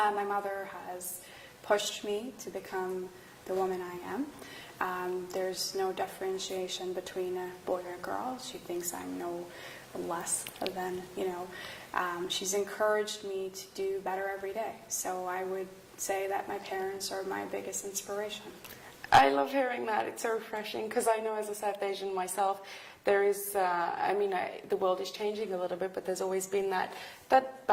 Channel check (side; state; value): both; identical; correlation 1.00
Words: mother has pushed me to become the woman I am. There's no differentiation between a boy or a girl. She thinks I'm no less than, she's encouraged me to do better every day. So I would say that my parents are my biggest inspiration. I love hearing that. It's so refreshing, because I know as a South Asian myself, there is, the world is changing a little bit, but there's always been that